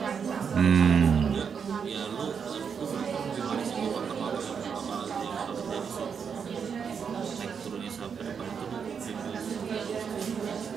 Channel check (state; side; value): quieter; left; 6.7 dB